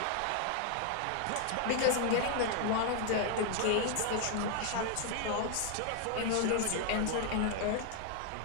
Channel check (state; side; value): different; both; correlation 0.00